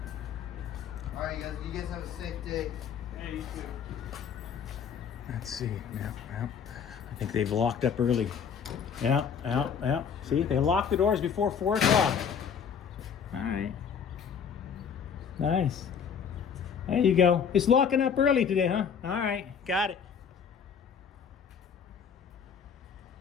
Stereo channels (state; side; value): quieter; right; 7.1 dB